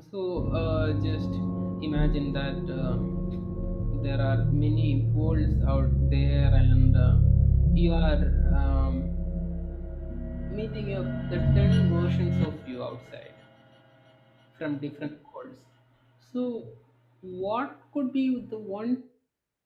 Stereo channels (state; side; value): identical; both; correlation 1.00